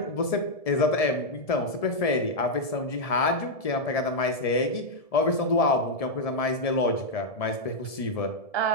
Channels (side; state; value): right; late; 1.7 ms